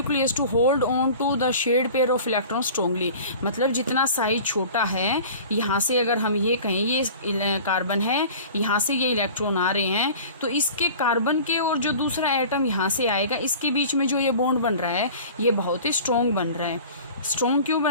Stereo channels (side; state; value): both; inverted; correlation -0.42